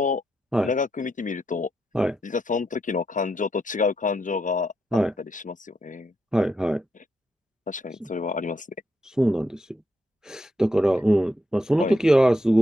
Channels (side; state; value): both; normal; correlation 0.81